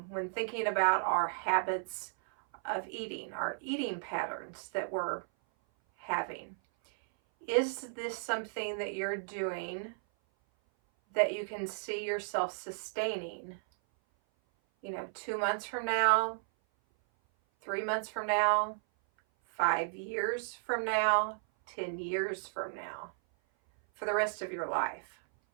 when thinking about our habits of eating, our eating patterns that we're having. Is this something that you're doing that you can see yourself sustaining, 2 months from now, 3 months from now, 5 years from now, 10 years from now, for the rest of your life?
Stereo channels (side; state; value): left; silent; 55 dB below the other